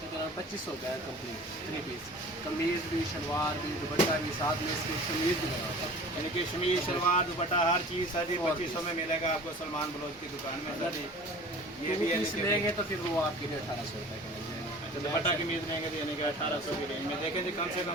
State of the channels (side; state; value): both; normal; correlation 0.42